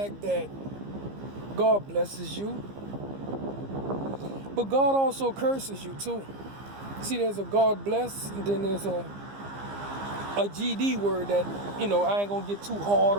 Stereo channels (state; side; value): late; left; 15 ms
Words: that God blesses you, but God also curses you too. See, there's a God bless, and then there's a GD word that, I ain't gonna get too hard